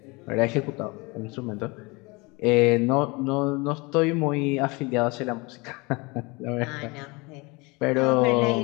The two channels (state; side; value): quieter; right; 26.4 dB